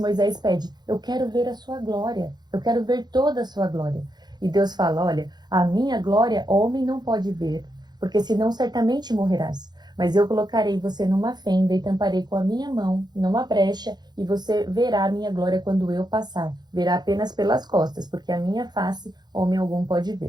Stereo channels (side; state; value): left; late; 0.20 ms